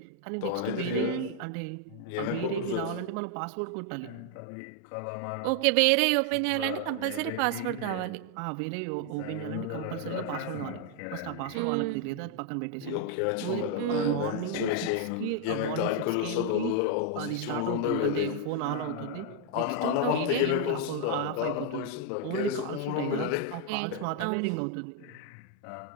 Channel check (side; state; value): both; different; correlation 0.00